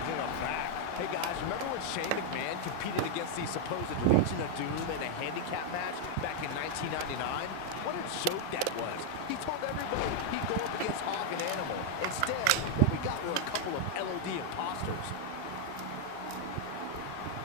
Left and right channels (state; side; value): different; both; correlation 0.00